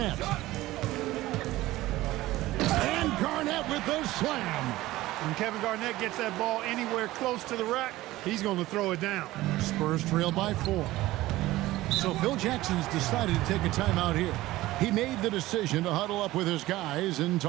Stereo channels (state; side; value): quieter; left; 17.2 dB